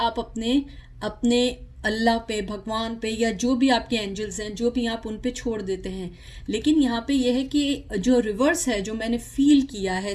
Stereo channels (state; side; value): identical; both; correlation 1.00